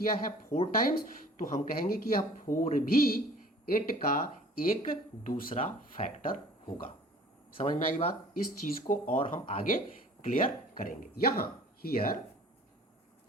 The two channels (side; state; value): both; normal; correlation 0.49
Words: है 4 टाइम्स, तो हम कहेंगे कि यह 4 भी 8 का एक दूसरा फैक्टर होगा। समझ में आई बात? इस चीज को और हम आगे क्लियर करेंगे। यहां